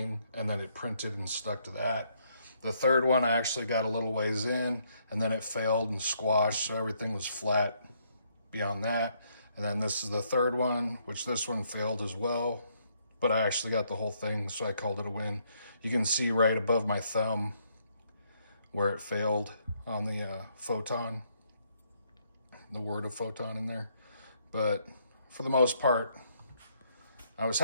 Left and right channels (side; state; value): both; inverted; correlation -0.71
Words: and then it printed and stuck to that. The third one, I actually got a little ways in, and then it failed and squashed, so everything was flat beyond that. And then this is the third one, which this one failed as well, but I actually got the whole thing, so I called it a win. You can see right above my thumb where it failed on the photon, the word of photon in there. But for the most part, I was